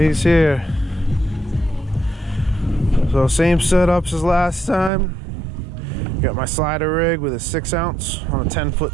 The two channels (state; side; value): drops out; left; at 4.9 s